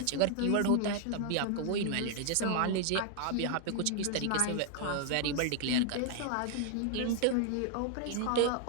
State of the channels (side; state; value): both; different; correlation 0.00